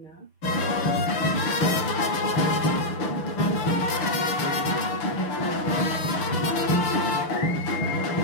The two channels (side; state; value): right; late; 6.1 ms